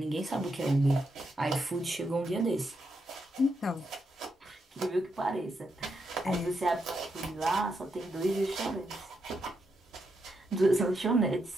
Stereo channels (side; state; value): both; normal; correlation 0.82